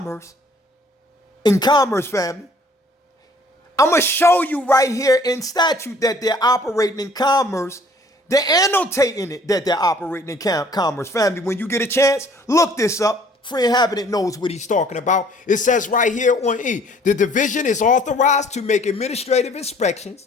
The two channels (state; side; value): normal; both; correlation 0.56